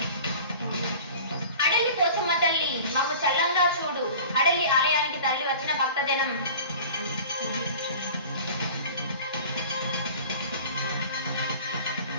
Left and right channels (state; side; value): inverted; both; correlation -0.41